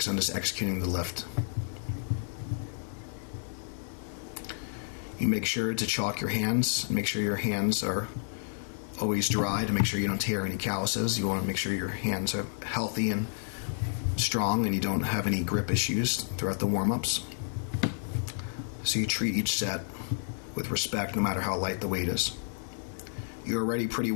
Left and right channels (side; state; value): right; silent; 57 dB below the other